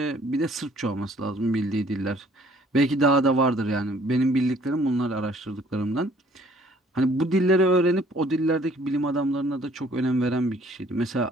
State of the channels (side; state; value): both; normal; correlation 0.58